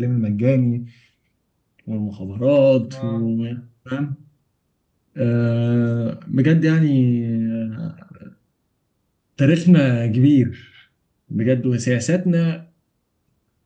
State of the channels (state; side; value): identical; both; correlation 1.00